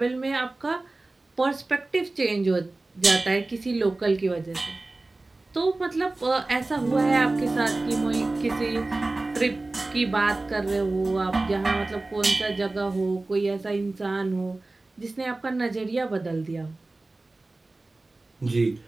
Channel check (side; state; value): left; quieter; 3.1 dB